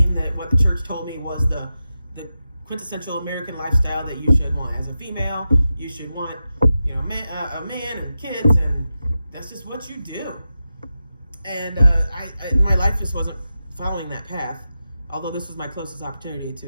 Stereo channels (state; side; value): inverted; both; correlation -0.91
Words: that what the church told me was the quintessential American lifestyle that you should want. As a female, you should want, a man and kids, and that's just what you do. And my life just wasn't following that path, although this was my closest opportunity